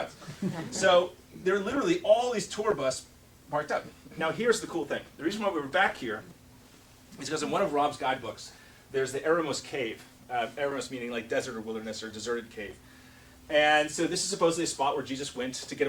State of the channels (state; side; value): identical; both; correlation 1.00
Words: So there are literally all these tour bus parked up. Now here's the cool thing. The reason why we were back here is because in one of Rob's guidebooks, there's the Eremos Cave. Eremos meaning like desert or wilderness or deserted cave. And so this is supposedly a spot where Jesus went to get